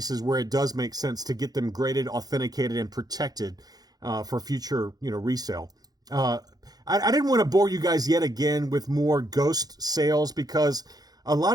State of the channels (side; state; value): left; late; 0.19 ms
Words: where it does make sense to get them graded, authenticated, and protected for future, resale. I didn't want to bore you guys yet again with more ghost sales, because a